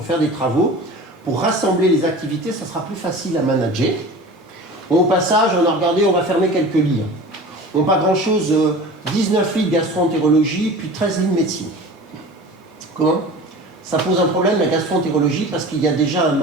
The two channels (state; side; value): normal; both; correlation 0.37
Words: faire des travaux. Pour rassembler les activités, ça sera plus facile à manager. Au passage, on a regardé, on va fermer quelques lits. On pas grand-chose, 19 lits de gastro-entérologie, puis 13 lits de médecine. Comment? Ça pose un problème, la gastro-entérologie, parce qu'il y a déjà un